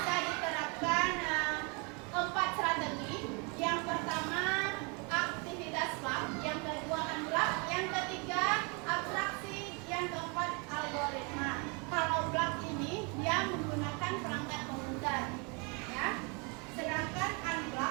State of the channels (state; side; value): quieter; left; 32.6 dB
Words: diterapkan 4 strategi. Yang pertama aktivitas lab, yang kedua unblock, yang ketiga abstraksi, yang keempat algoritma. Kalau block ini dia menggunakan perangkat komputer, ya. Sedangkan